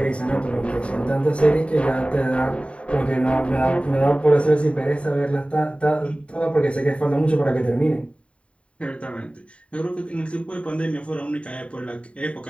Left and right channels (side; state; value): right; late; 0.061 ms